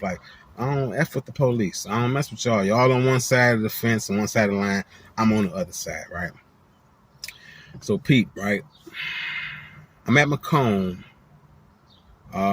like, I don't F with the police. I don't mess with y'all. Y'all on one side of the fence and one side of the line. I'm on the other side, right? So Pete, right? I'm at Macomb.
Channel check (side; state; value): both; identical; correlation 1.00